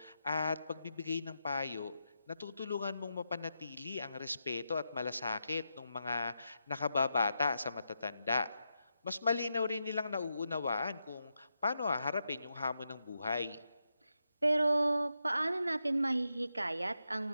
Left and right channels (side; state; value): both; inverted; correlation -0.86